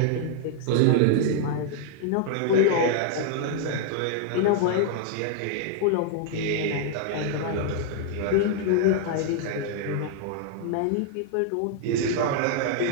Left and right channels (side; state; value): both; different; correlation 0.00